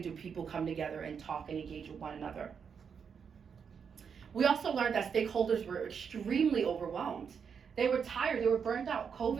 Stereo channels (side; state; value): left; quieter; 6.7 dB